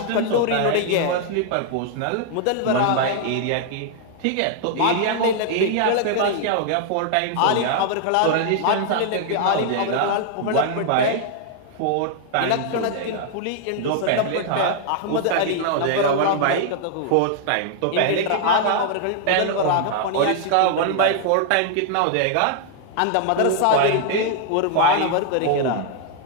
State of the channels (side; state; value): both; different; correlation -0.01